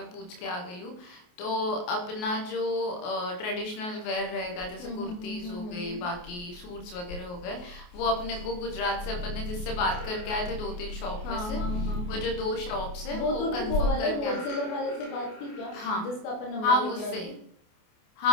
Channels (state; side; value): late; right; 28 ms